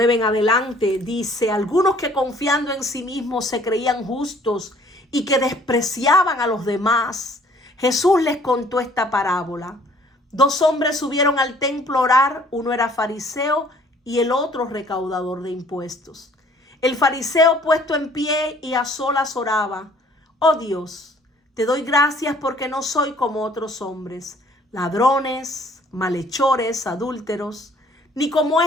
en adelante. Dice, algunos que confiando en sí mismos se creían justos y que despreciaban a los demás. Jesús les contó esta parábola. 2 hombres subieron al templo a orar, uno era fariseo y el otro recaudador de impuestos. El fariseo puesto en pie y a solas oraba, oh Dios, te doy gracias porque no soy como otros hombres, ladrones, malhechores, adúlteros, ni como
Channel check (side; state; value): both; normal; correlation 0.57